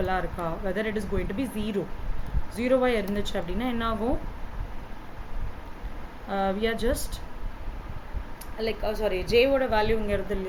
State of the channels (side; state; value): both; identical; correlation 1.00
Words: இருக்கா, whether it is going to be 0 வா இருந்துச்சு அப்படின்னா என்ன ஆகும், we are just like j ஓட value இங்க இருக்கு